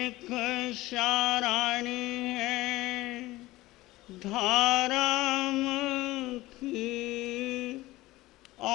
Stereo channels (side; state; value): right; quieter; 18.4 dB